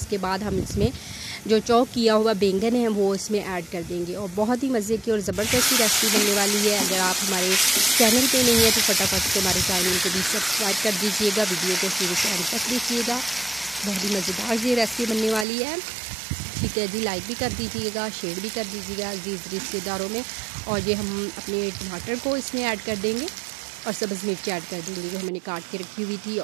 बाद हम इसमें जो चॉप किया हुआ बैंगन है वो इसमें ऐड कर देंगे। और बहुत ही मज़े की और ज़बरदस्त रेसिपी बनने वाली है। अगर आप हमारे चैनल पे नहीं है तो फटाफट से हमारे चैनल को भी सब्सक्राइब कर दीजिएगा, वीडियो को शुरू से अंत तक देखिएगा। बहुत ही मज़ेदार ये रेसिपी बनने वाली है। ठीक है जी, लाइक भी कर दीजिएगा, शेयर भी कर दीजिएगा अजीज़ रिश्तेदारों में। और ये हम अपने टमाटर को इसमें ऐड कर देंगे और सब्ज़ मिर्च ऐड कर देंगे जो मैंने काट के रखी हुई थी।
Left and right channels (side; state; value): left; drops out; at 15.5 s